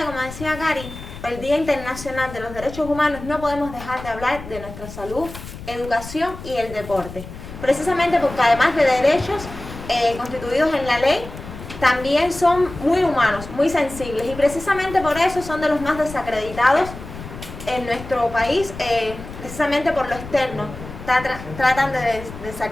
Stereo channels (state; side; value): noise; left; rumble, 13 dB below the sound